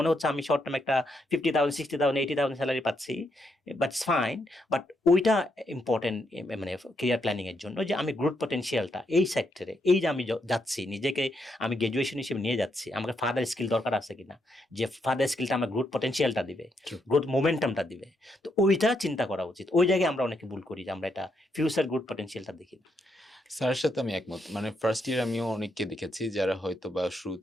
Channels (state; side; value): normal; both; correlation 0.79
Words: হচ্ছে আমি শর্ট টার্ম একটা 50,000 60,000 80,000 স্যালারি পাচ্ছি, বাট ইটস ফাইন, বাট ওইটা ইম্পর্টেন্ট মানে কেরিয়ার প্ল্যানিংয়ের জন্য, যে আমি গ্রোথ পটেনশিয়ালটা এই সেক্টরে, এই যে আমি যাচ্ছি, নিজেকে আমি গ্র্যাজুয়েশন হিসেবে নিয়ে যাচ্ছি, আমাকে ফার্দার স্কিল দরকার আছে কিনা, যে ফার্দার স্কিলটা আমার গ্রোথ পটেনশিয়ালটা দিবে, গ্রোথ মোমেন্টামটা দিবে। তো ওইটা চিন্তা করা উচিত। ওই জায়গায় আমরা অনেকে ভুল করি যে আমরা এটা ফিউচার গ্রোথ পটেনশিয়ালটা দেখি না। স্যারের সাথে আমি একমত। মানে ফার্স্ট ইয়ার আমিও অনেককে দেখেছি যারা হয়তো বা